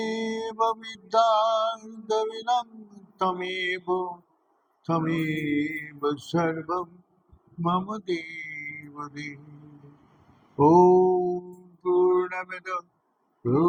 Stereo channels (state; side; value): identical; both; correlation 1.00